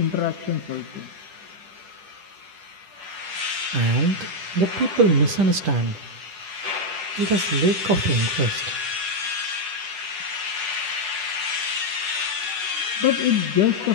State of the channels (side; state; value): left; late; 10 ms